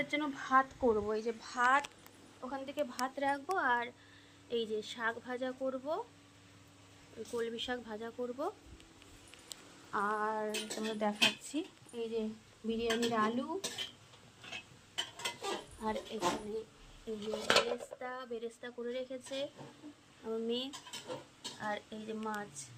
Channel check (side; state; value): both; identical; correlation 1.00